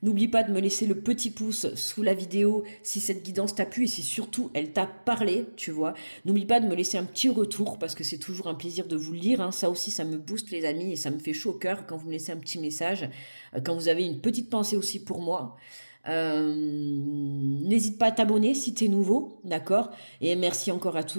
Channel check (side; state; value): both; inverted; correlation -1.00